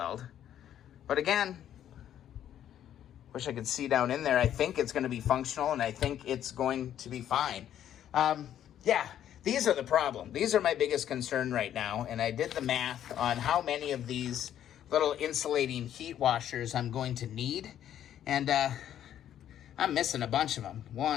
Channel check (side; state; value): right; quieter; 10.7 dB